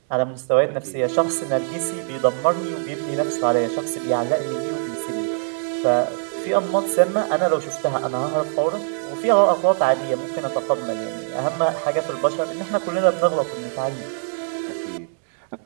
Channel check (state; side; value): silent; left; digital silence